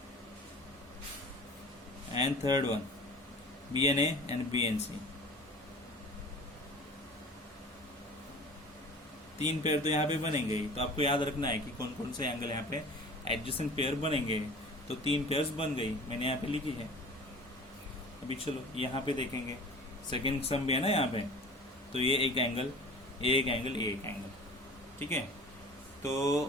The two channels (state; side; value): normal; both; correlation 0.42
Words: and third one B N A and B N C. तीन पेयर तो यहाँ पे बनेंगे ही। तो आपको याद रखना है कि कौन कौन से एंगल यहाँ पे एडजेसेंट पेयर बनेंगे। तो तीन पेयर्स बन गई, मैंने यहाँ पे लिखी है। अभी चलो यहाँ पे देखेंगे, सेकेंड सम भी है ना यहाँ पे। तो ये एक एंगल, ये एक एंगल, ये एक एंगल। ठीक है, तो